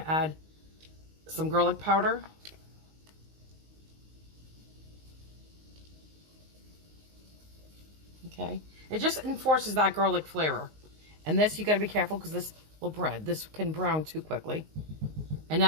to add some garlic powder. Okay. It just enforces that garlic flavor. And this, you got to be careful because this can brown too quickly. And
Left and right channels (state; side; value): late; left; 19 ms